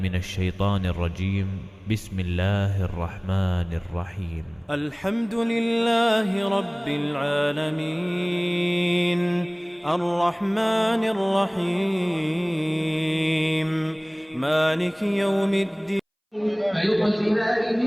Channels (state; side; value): identical; both; correlation 1.00